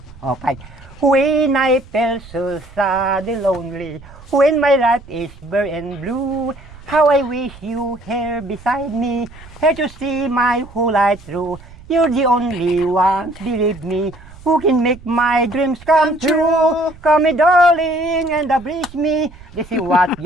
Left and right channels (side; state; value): right; noise; rumble, 20 dB below the sound